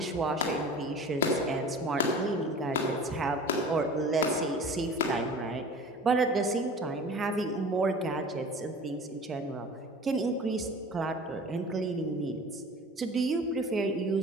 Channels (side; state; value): both; normal; correlation 0.41